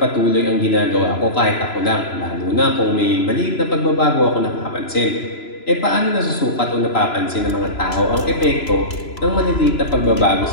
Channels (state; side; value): late; right; 3.0 ms